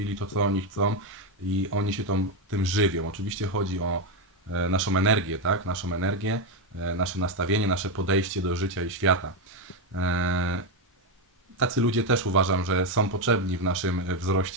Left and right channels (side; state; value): both; normal; correlation 0.07